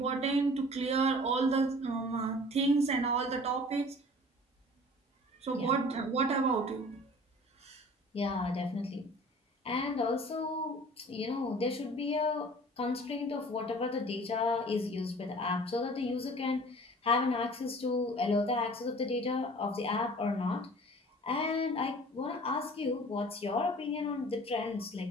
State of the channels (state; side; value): normal; both; correlation 0.46